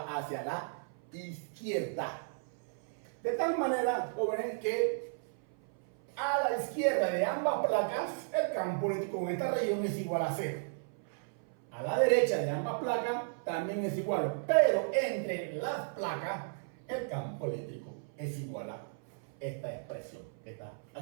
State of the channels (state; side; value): silent; left; 55 dB below the other